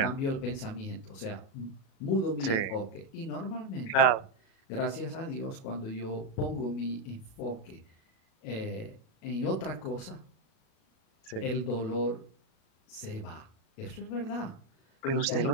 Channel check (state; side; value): late; right; 37 ms